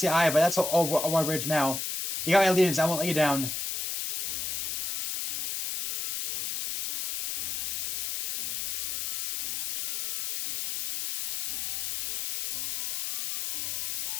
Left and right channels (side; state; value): left; noise; hiss, 3 dB below the sound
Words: aye, but that's all our bridge now. You got my allegiance, I won't let you down.